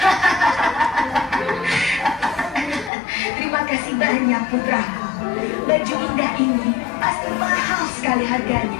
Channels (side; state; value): right; drops out; at 2.9 s